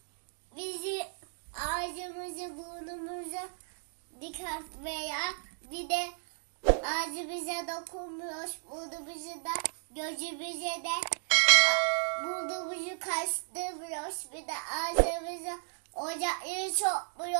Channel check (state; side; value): silent; left; digital silence